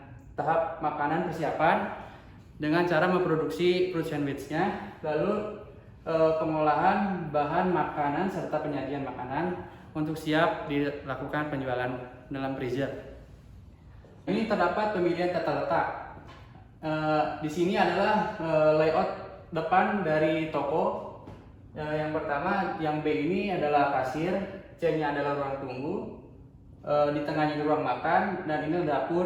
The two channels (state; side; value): identical; both; correlation 1.00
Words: tahap makanan persiapan dengan cara memproduksi fruit sandwich-nya, lalu pengolahan bahan makanan serta penyajian makanan untuk siap dilakukan penjualan dalam freezer. Ini terdapat pemilihan tata letak. Di sini adalah layout depan dari toko. Yang pertama, yang B ini adalah kasir, C-nya adalah ruang tunggu, Di tengahnya ruang makan, dan ini